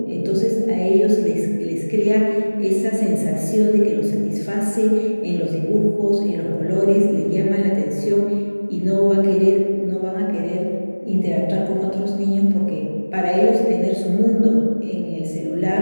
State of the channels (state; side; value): inverted; both; correlation -1.00